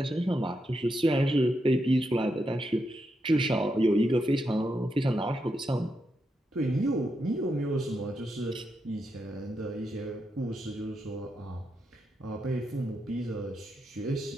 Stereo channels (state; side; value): normal; both; correlation 0.84